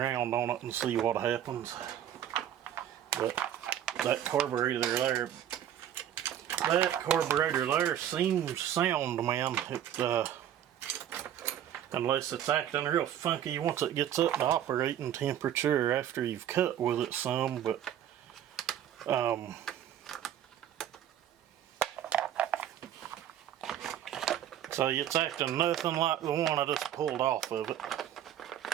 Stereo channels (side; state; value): left; quieter; 10.7 dB